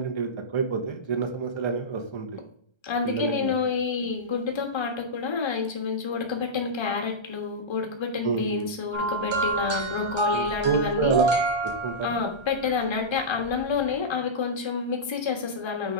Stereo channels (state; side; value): late; right; 1.3 ms